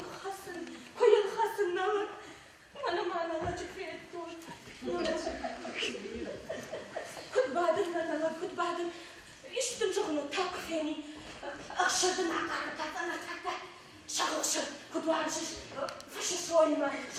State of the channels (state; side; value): identical; both; correlation 1.00